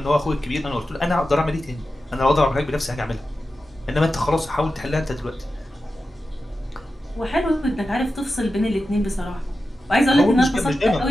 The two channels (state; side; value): normal; both; correlation 0.92